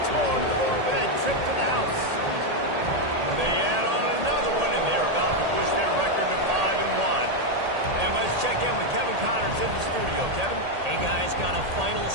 more to the board with that trip to the house. They add on another one, and they're about to push their record to 5-1. And let's check in with Kevin Connors in the studio. Kevin? Hey, guys, got a final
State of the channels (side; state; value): left; late; 1.8 ms